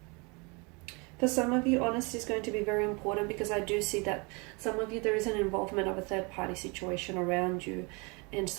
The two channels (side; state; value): left; quieter; 29.9 dB